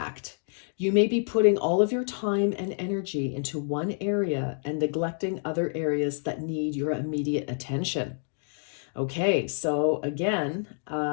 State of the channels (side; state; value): right; silent; digital silence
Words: You may be putting all of your time and energy into one area and neglecting other areas that need your immediate attention. Okay, so again,